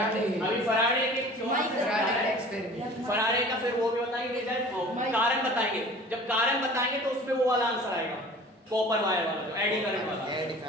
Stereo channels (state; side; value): normal; both; correlation 0.44